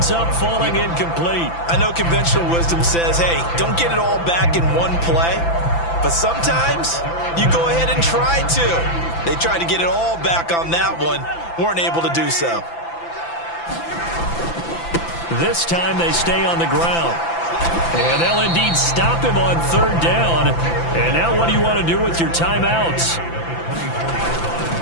up falling incomplete. I know conventional wisdom says, hey, don't get it all back in one play. But sometimes you go ahead and try to. They tried to get it all back on that one. Weren't able to do so. This time they stay on the ground. And they'll indeed stop him on 3rd down. And now what do you want to do with your timeouts?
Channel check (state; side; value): late; right; 5.9 ms